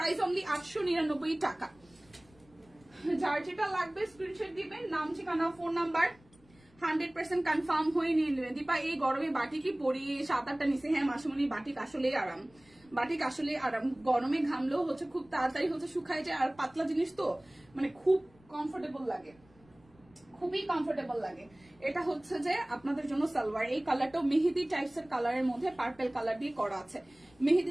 অনলি 899 টাকা। যার যেটা লাগবে স্ক্রিনশট দিবেন, নাম ঠিকানা ফোন নাম্বার 100% কনফার্ম হয়ে নিয়ে নেবেন। দীপা এই গরমে বাটিকই পরি, 7-8টা নিচে। হ্যাঁ মাসুমনি, বাটিক আসলেই আরাম, বাটিক আসলে আরাম। গরমে ঘামলেও হচ্ছে খুব তাড়াতাড়ি হচ্ছে শুকায় যায়, আর পাতলা জিনিস তো মানে খুব কমফোর্টেবল লাগে, খুবই কমফোর্টেবল লাগে। এটা হচ্ছে যে আপনাদের জন্য সালোয়ার। এই কালারটাও মেহেদি টাইপস এর কালারের মধ্যে পার্পল কালার দিয়ে করা আছে,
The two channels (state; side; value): noise; left; rumble, 29 dB below the sound